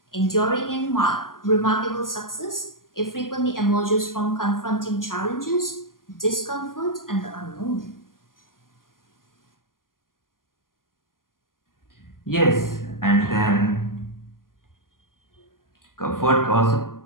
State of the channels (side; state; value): right; late; 0.91 ms